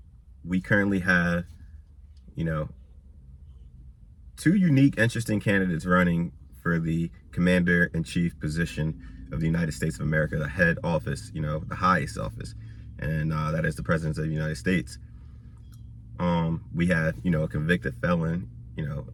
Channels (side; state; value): both; identical; correlation 1.00